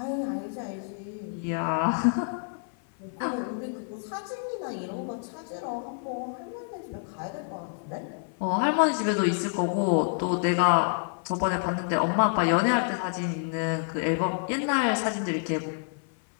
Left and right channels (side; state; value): right; silent; 55 dB below the other